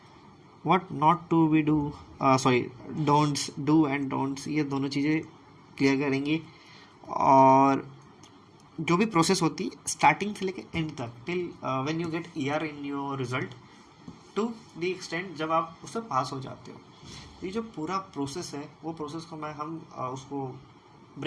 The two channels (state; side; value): identical; both; correlation 1.00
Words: what not to be do, sorry, don'ts, do and don'ts, ये दोनों चीज़ें क्लियर करेंगे। और जो भी प्रोसेस होती है स्टार्टिंग से लेकर एंड तक, till when you get year in your result, to the extend जब आप उससे पास हो जाते हो। ये जो पूरा प्रोसेस है वो प्रोसेस को हम उसको